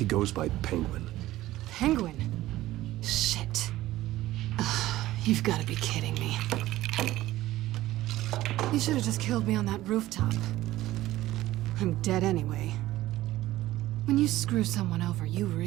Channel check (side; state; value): left; quieter; 15.8 dB